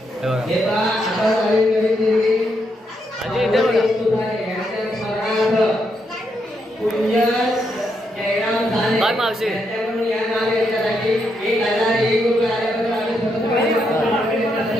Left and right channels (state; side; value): normal; both; correlation 0.79